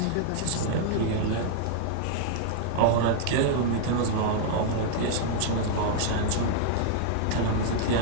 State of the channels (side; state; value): both; different; correlation -0.01